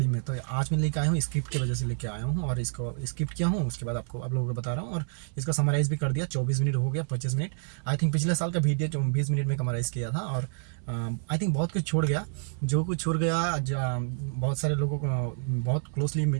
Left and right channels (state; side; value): silent; left; digital silence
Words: में, तो आज मैं लेके आया हूँ, स्क्रिप्ट की वजह से लेके आया हूँ और इसको स्क्रिप्ट किया हूँ। उसके बाद आप लोगों को बता रहा हूँ और इसका समराइज़ भी कर दिया। 24 मिनट हो गया, 25 मिनट आई थिंक। पिछले साल का वीडियो जो 20 मिनट में समराइज़ किया था, और आई थिंक बहुत कुछ छोड़ गया। जो कुछ छोड़ गया, बहुत सारे लोगों को बहुत क्लोजली